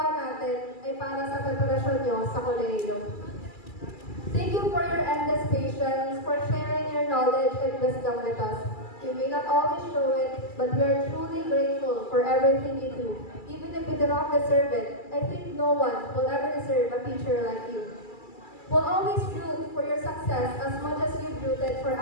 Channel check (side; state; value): right; late; 2.3 ms